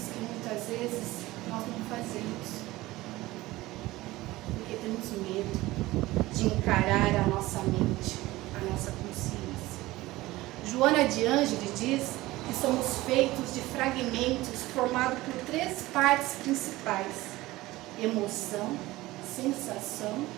que muitas vezes nós não fazemos, porque temos medo de encarar a nossa mente, a nossa consciência. Joana de Ângeles diz que somos feitos de fragmentos formados por 3 partes principais: emoção, sensação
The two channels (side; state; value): left; quieter; 18.5 dB